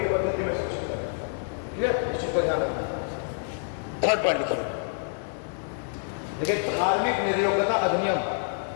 पद्धति में शिक्षित करना। ठीक है, इस चीज को ध्यान रखना। थर्ड पॉइंट लिखिए, देखिए धार्मिक निर्योग्यता अधिनियम,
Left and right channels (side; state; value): right; silent; digital silence